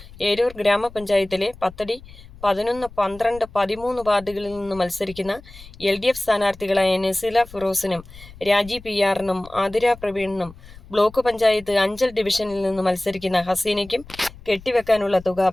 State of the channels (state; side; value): noise; left; rumble, 19 dB below the sound